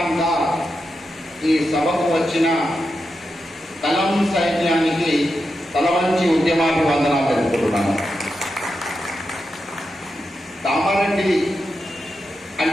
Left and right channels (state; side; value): normal; both; correlation 0.88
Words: ఈ సభకు వచ్చిన కలం సైన్యానికి తలవంచి ఉద్యమాభివందనాలు తెలుపుతున్నాను. కామారెడ్డి